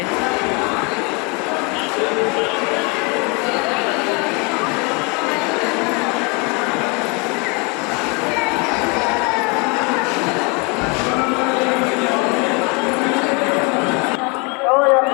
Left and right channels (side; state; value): right; quieter; 30.7 dB